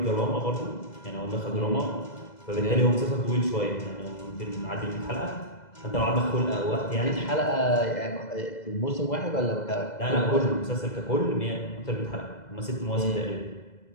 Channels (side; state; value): right; late; 2.0 ms